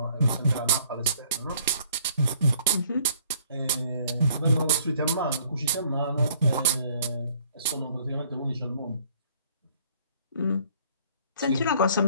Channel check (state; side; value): inverted; both; correlation -0.59